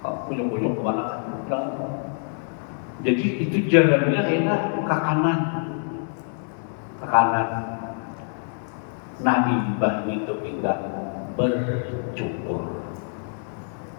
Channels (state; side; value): silent; right; 62 dB below the other